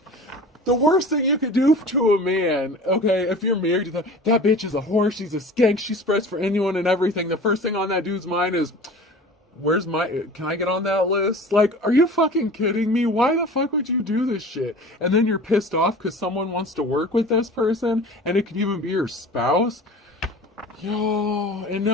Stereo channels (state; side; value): normal; both; correlation 0.40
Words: The worst thing you could do to a man, okay, if you're married to that bitch is a whore, she's a skank, she spreads for anyone and everything. The first thing on that dude's mind is, can I get on that list? Like, are you fucking kidding me? Why the fuck would you do this shit? And then you're pissed off because someone wants to work with this person, and it could even be your spouse. Yo, and